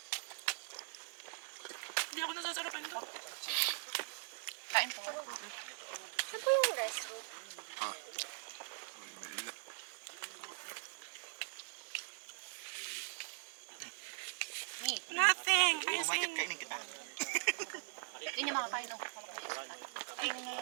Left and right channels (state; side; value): silent; left; digital silence